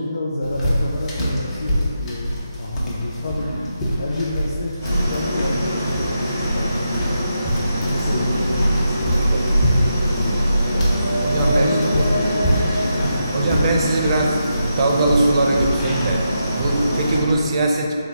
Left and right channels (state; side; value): inverted; both; correlation -0.84